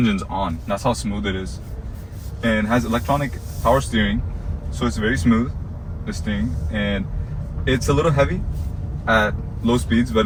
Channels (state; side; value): identical; both; correlation 1.00